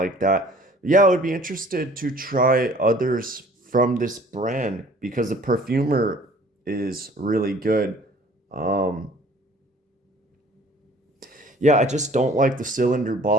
that. Yeah, I would be interested to try others from this brand because the perfumer is really good. Um, yeah, I just don't like the cylinder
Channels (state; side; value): normal; both; correlation 0.51